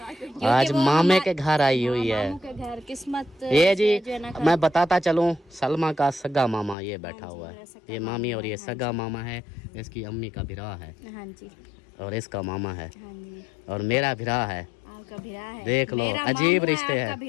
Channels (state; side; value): drops out; right; at 6.8 s